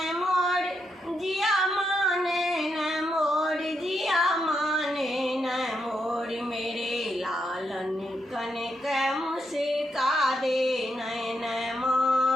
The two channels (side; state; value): both; normal; correlation 0.81